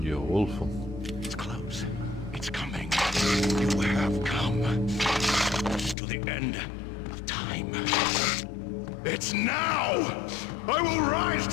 diyor, wolf'um. It's close. It's coming. You have come to the end of time. It's now. I will rise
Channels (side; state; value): right; drops out; at 6.0 s